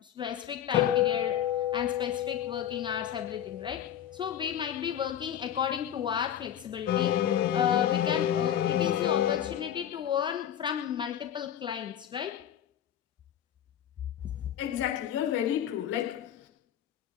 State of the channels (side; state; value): right; quieter; 10.2 dB